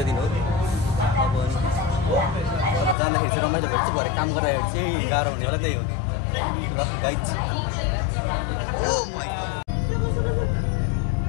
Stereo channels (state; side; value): drops out; right; at 3.0 s